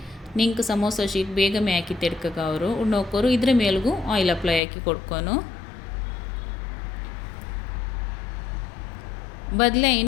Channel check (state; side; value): drops out; right; at 4.6 s